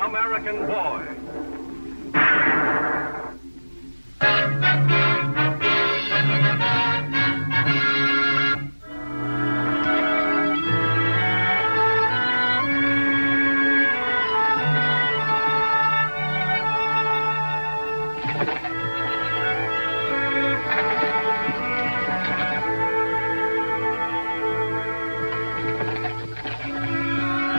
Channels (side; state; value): both; inverted; correlation -1.00